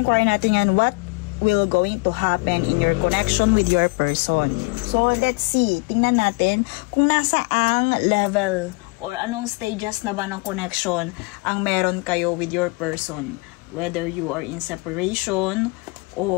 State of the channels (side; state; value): right; quieter; 28.6 dB